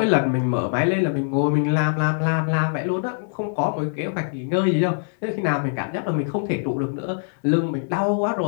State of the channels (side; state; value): right; silent; digital silence